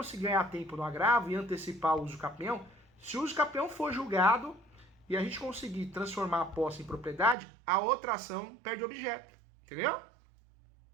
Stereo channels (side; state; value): left; drops out; at 7.4 s